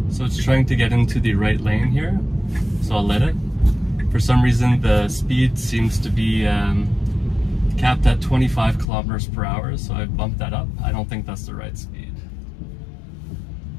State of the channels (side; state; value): right; drops out; at 8.8 s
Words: So it's trying to get into the right lane here, so I'll let it. For some reason the speed seems to be capped at 25 kilometers per hour, so I've bumped that up. I don't think that's the right speed.